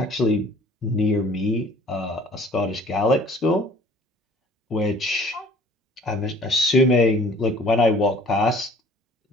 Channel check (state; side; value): normal; both; correlation 0.52